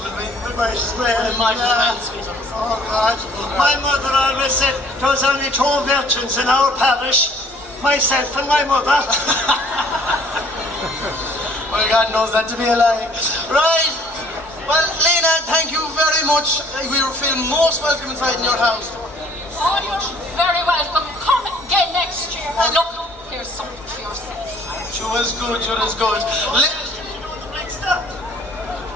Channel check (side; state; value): both; normal; correlation 0.57